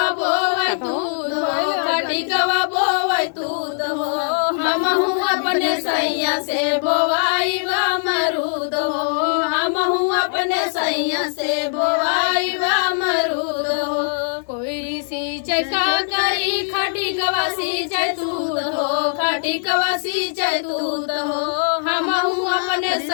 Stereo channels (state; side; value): silent; right; digital silence